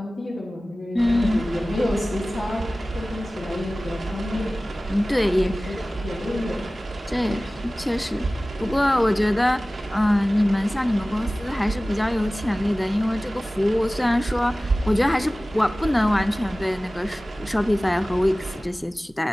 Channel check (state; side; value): normal; both; correlation 0.97